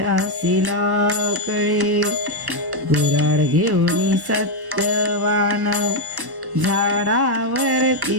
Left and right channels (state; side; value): late; left; 1.1 ms